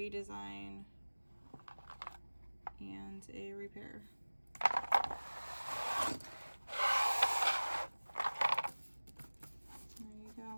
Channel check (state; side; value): inverted; both; correlation -1.00